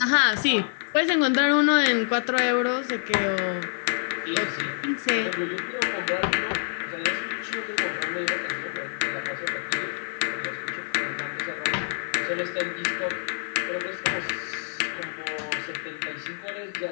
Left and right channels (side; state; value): right; silent; digital silence